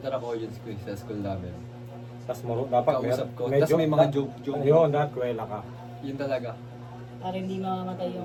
ako audience ko eh, sa school namin. Tapos dapat Kausap ko. Tapos may mga joke. Ayun, dapat kwela ka. Yun talaga. Para hindi mamamatay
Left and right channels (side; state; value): both; identical; correlation 1.00